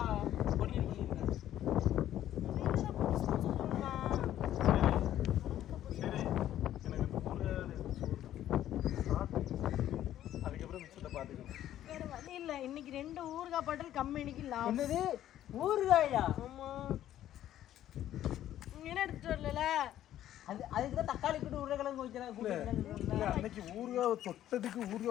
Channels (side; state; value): right; quieter; 12.2 dB